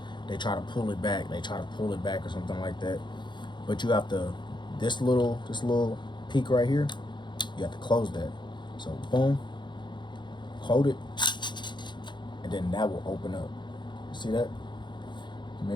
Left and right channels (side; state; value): right; late; 0.22 ms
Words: they try to pull it back, or something like that. But you have to, this little peak right here, you have to close that. So boom, hold it, and then that will open up. You see that?